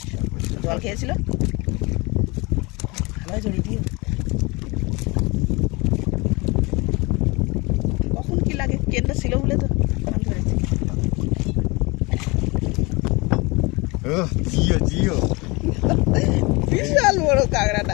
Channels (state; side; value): quieter; right; 25.7 dB